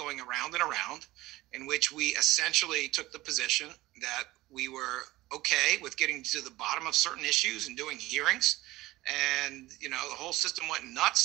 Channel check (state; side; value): quieter; left; 18.2 dB